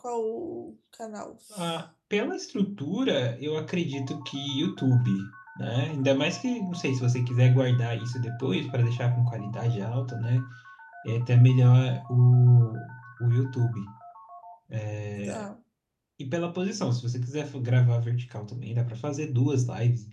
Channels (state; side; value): identical; both; correlation 1.00